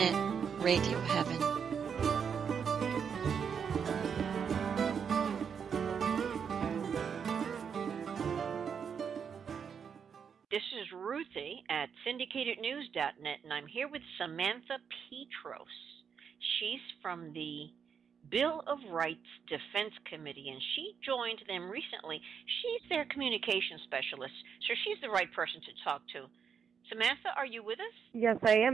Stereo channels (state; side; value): quieter; left; 7.0 dB